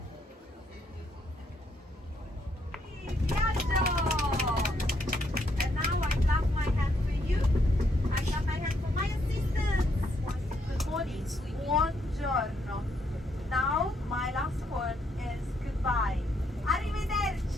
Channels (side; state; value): both; normal; correlation 0.74